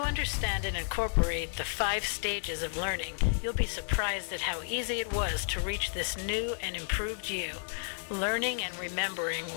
understand and incorporate the 5 stages of learning, you'll be surprised at how easy it was to reach this new and improved you, learning and remembering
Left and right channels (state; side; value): silent; right; digital silence